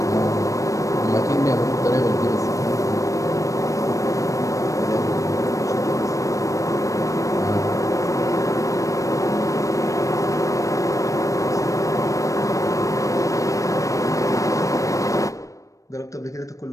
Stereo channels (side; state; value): right; late; 0.16 ms